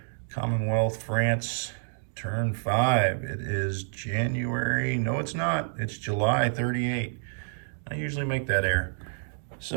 Commonwealth, France, turn 5. It is January, no it's not, it's July 38. I usually make that error.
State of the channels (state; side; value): silent; left; digital silence